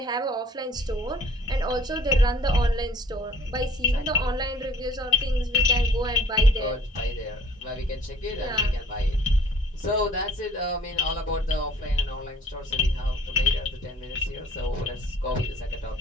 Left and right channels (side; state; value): both; normal; correlation 0.53